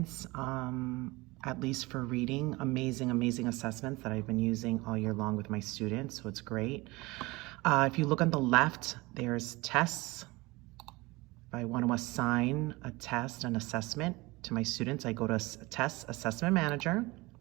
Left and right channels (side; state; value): left; quieter; 22.6 dB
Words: at least for reading, amazing assessments that I've been using all year long with my students, so it's great. If you look on the left, there's tests. If I want to assign a test, an assessment to my students, I go to Test Assessment Manager.